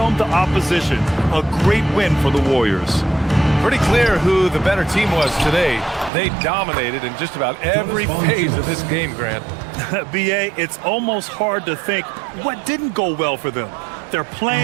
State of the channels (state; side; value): drops out; left; at 6.1 s